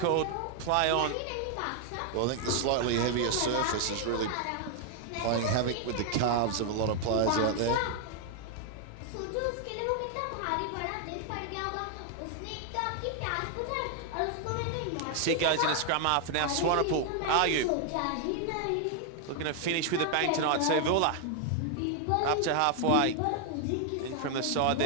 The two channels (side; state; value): both; different; correlation 0.00